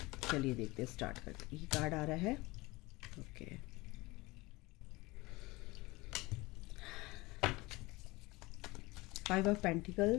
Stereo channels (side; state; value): right; quieter; 22.4 dB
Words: चलिए देखते हैं, स्टार्ट करते। ये कार्ड आ रहा है। Okay, five of